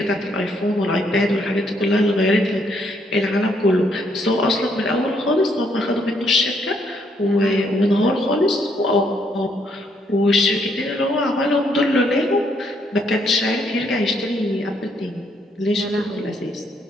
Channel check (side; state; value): both; normal; correlation 0.71